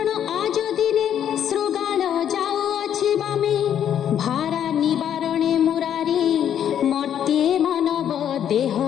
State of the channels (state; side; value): quieter; right; 9.6 dB